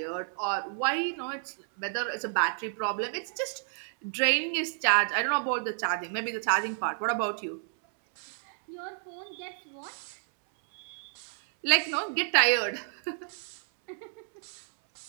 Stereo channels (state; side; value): silent; left; 58 dB below the other